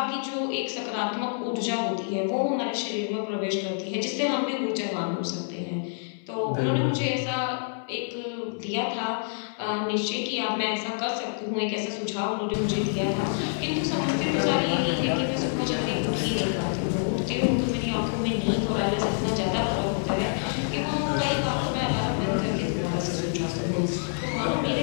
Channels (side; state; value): right; silent; 59 dB below the other